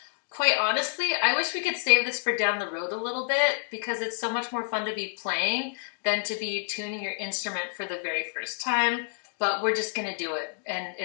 Quite honestly, I wish we could save this for down the road a little bit because it's so much more fun to be playing than to be tuning your instrument for the very first time, but we're just gonna do it and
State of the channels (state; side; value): silent; right; digital silence